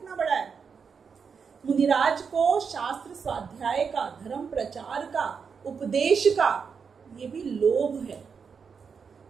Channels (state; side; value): quieter; left; 6.0 dB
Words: बड़ा है। मुनिराज को शास्त्र स्वाध्याय का, धर्म प्रचार का, उपदेश का, ये भी लोभ है।